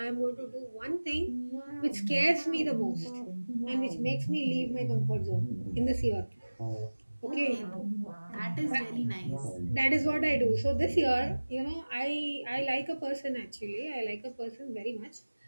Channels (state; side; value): inverted; both; correlation -1.00